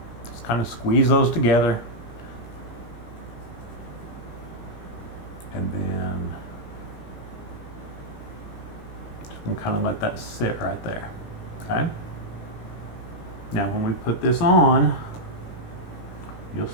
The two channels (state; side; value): late; right; 17 ms